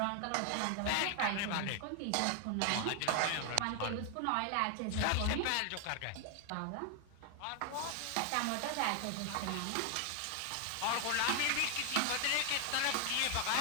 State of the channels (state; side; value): different; both; correlation 0.00